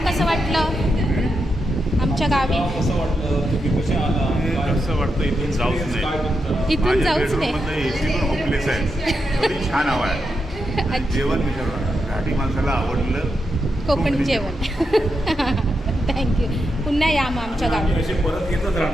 कसं वाटलं आमच्या गावी? गाव कसं वाटलं? तुम्ही कशा आला? काय- कसं वाटतं इथून जाऊच काय नाही. म्हणता? इथून जाऊच नाही. एसी पण होपलेस आहे. एवढी छान हवा आहे. जेवण विचारलं, घाटी माणसाला आवडलं कोकणी जेवण. थँक्यू. पुन्हा या मग आमच्या गावी. आम्ही असे परत येतच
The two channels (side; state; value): both; normal; correlation 0.85